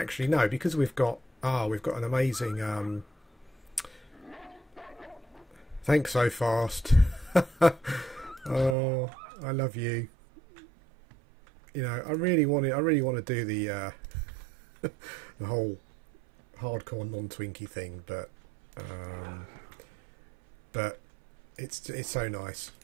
no, because we've got an amazing. Thanks so fast. Oh, I love you. You know, I really want to do the the whole hardcore non-Twinkie thing, but it's so nice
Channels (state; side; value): drops out; left; at 8.8 s